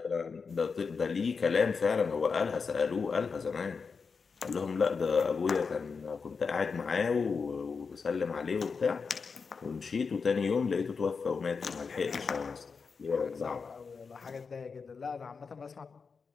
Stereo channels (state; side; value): quieter; right; 5.2 dB